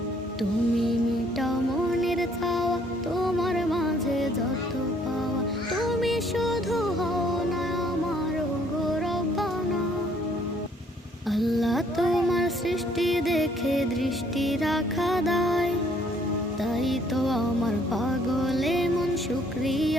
তুমি মিটাও মনের চাওয়া, তোমার মাঝে যত পাওয়া, তুমি শুধু হও না আমার গৌরবানা। আল্লাহ তোমার সৃষ্টি দেখে দৃষ্টি রাখা দায়, তাই তো আমার পাগলে মন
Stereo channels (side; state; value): both; normal; correlation 0.64